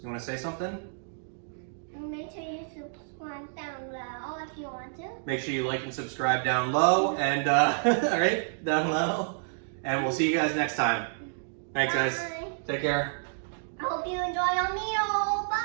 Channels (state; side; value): silent; left; digital silence